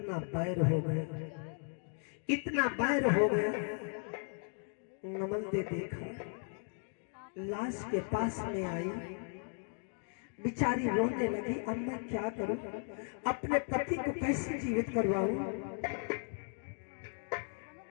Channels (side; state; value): right; silent; 54 dB below the other